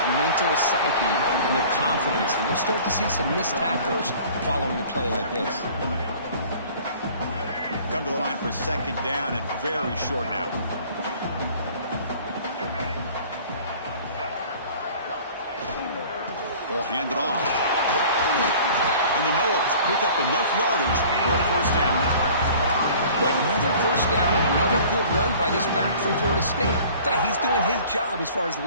mental psyche and their confidence. And you'll start to see some missed tackles following a play like this. Come to the line for second down and very short now. Ball handed off. And the Noles pick up enough yardage for a first down. Another first down and another good run by this back from Florida State. He's doing his job as far as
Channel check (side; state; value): both; inverted; correlation -0.48